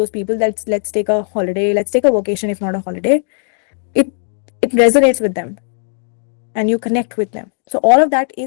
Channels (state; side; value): silent; right; digital silence